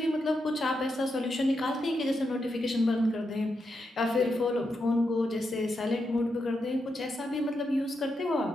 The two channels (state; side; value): normal; both; correlation 0.84